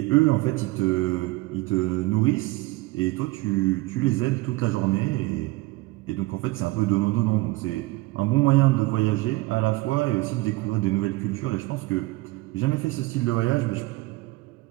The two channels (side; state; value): left; quieter; 21.1 dB